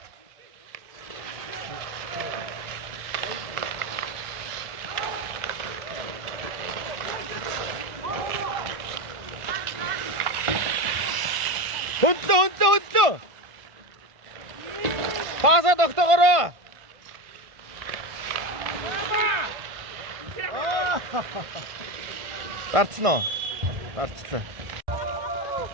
Хүндлөө. Паса тогтоогоорой. Дарцноо. Дарцлаа.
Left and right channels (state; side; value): late; left; 1.5 ms